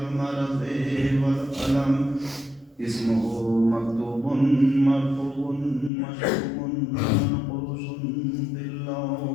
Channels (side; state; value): right; drops out; at 5.9 s